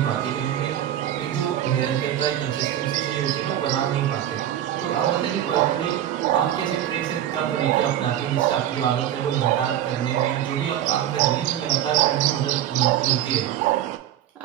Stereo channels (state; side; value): quieter; left; 11.5 dB